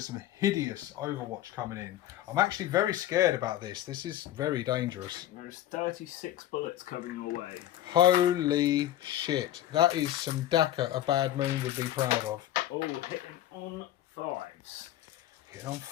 some hideous Overwatch coming in. I'm actually very scared about this. This is very dangerous. There's 36 bullets coming your way. Holy shit. That is some Daka a Bad Moon would be proud of. Oh, hitting on 5s. Hitting on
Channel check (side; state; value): right; quieter; 13.0 dB